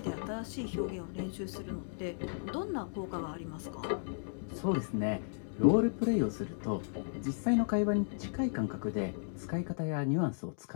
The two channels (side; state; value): right; silent; digital silence